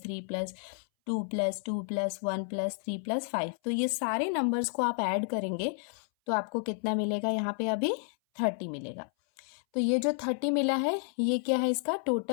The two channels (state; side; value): silent; right; 57 dB below the other